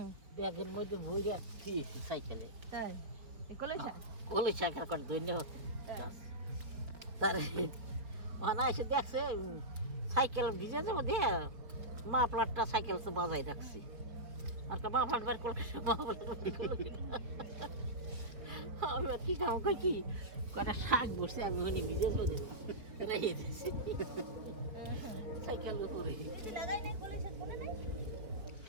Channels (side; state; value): left; late; 4.8 ms